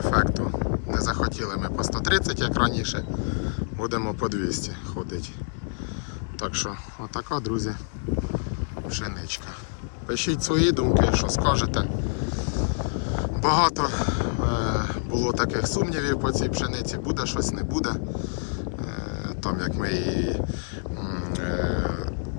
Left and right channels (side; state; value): right; silent; digital silence